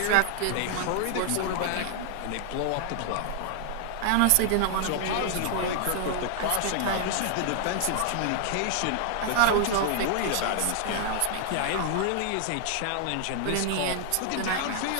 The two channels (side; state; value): both; different; correlation 0.00